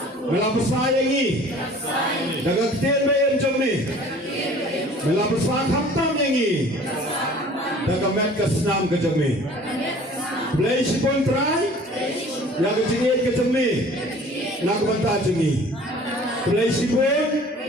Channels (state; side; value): normal; both; correlation 0.49